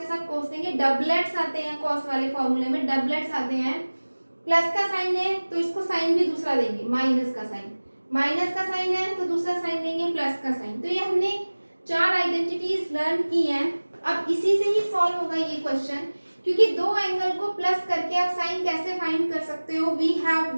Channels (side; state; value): both; inverted; correlation -1.00